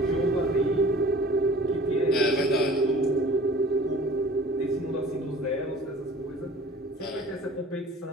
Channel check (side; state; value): both; normal; correlation 0.46